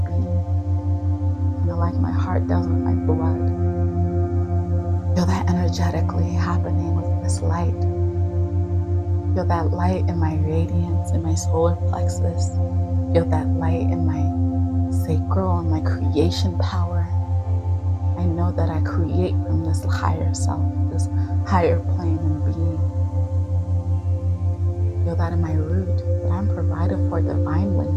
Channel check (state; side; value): identical; both; correlation 1.00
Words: being. Kind of like my heart does with my blood. Feel that energetically happening with this light. Feel that light in my radiance, in my solar plexus. Feel that light in my sacral and my creation power. I know that I create from this higher self, this higher plane and being. Feel that in my root, that I'm provided for divinely.